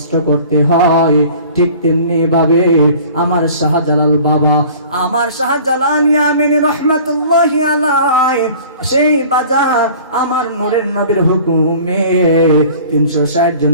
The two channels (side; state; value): both; inverted; correlation -0.46